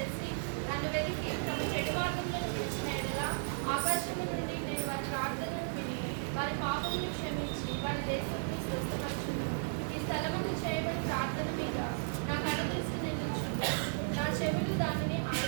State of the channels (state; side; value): silent; left; digital silence